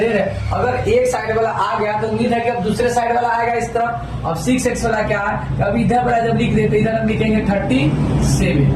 है, अगर एक साइड वाला आ गया तो उम्मीद है कि अब दूसरे साइड वाला आएगा इस तरफ। अब 6x वाला क्या है, अब इधर वाला जब लिख देते इधर हम लिखेंगे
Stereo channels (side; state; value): both; identical; correlation 1.00